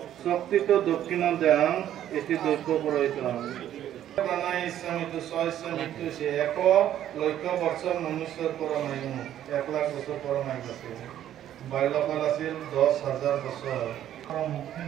শক্তিত দক্ষিণ দেহম এটি দৈব্য পুৰোহিত প্রাণায় ইসলামিত সহস্র মৃত্যু সে এক লক্ষ বছর মনুষ্যর পরমায়ু 1 লাখ বছর পরমায়ু আছে বাল্যকাল আছিল 10,000 বছর মুক্তি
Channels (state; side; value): quieter; left; 11.4 dB